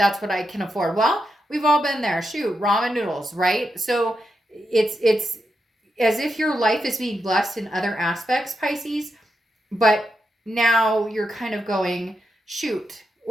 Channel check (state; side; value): normal; both; correlation 0.86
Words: what I can afford. Well, we've all been there. Shoot, ramen noodles, right? So it's as if your life is being blessed in other aspects, Pisces, but now you're kind of going, "Shoot,